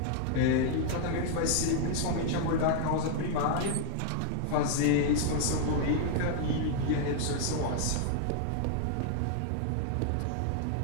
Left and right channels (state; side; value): different; both; correlation 0.00